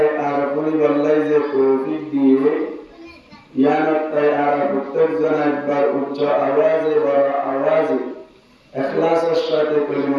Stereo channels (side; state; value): both; identical; correlation 1.00